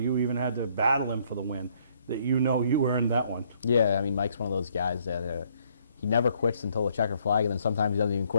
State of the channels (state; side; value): inverted; both; correlation -0.67